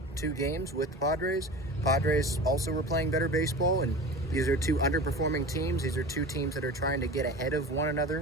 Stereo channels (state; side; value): normal; both; correlation 0.34